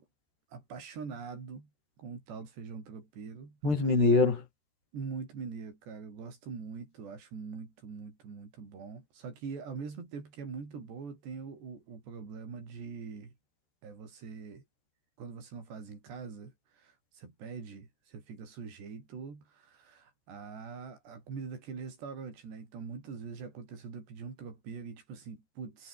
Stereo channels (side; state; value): left; late; 14 ms